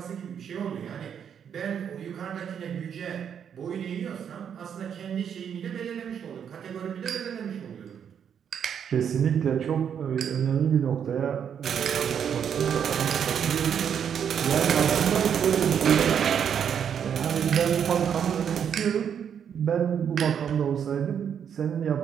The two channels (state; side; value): quieter; left; 8.1 dB